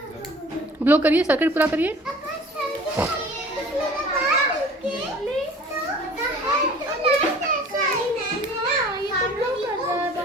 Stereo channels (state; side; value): normal; both; correlation 0.46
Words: ब्लो करिए, सर्किट पूरा करिए।